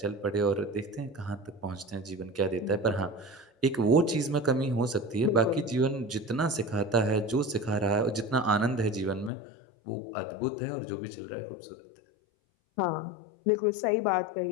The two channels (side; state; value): right; drops out; at 9.3 s